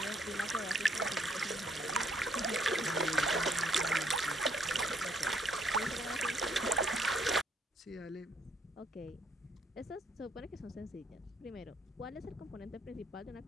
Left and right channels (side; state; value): both; normal; correlation 0.68